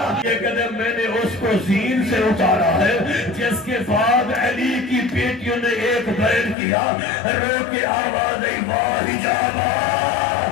یہ قدم میں نے اس کو زین سے اتارا ہے، جس کے بعد علی کی بیٹیوں نے ایک بیان کیا، رو کے آواز ای واہ حجابا،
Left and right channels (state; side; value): drops out; right; at 6.6 s